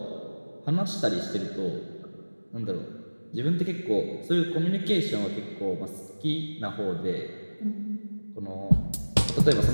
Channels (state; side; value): inverted; both; correlation -1.00